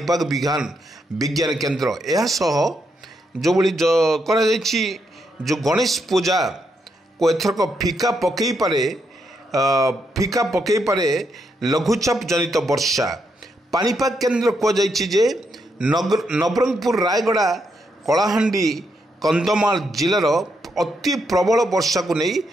विज्ञान केन्द्र यह सह जो भली करा जाइछि जो गणेश पूजा को एथरक फिका पकई पारे लघुचाप जनित वर्षा पाणीपाग केन्द्र कहुଯାଇଛି जे नवरंगपुर रायगड़ा कलाहांडी कंधमाल जिलार अति प्रबल वर्षा को नहीं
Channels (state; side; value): normal; both; correlation 0.79